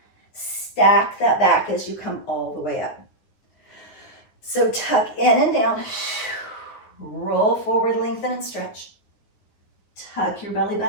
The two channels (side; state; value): right; late; 9.8 ms